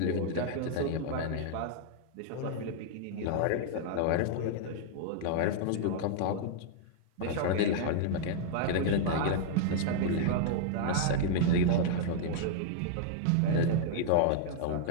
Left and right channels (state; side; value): different; both; correlation -0.01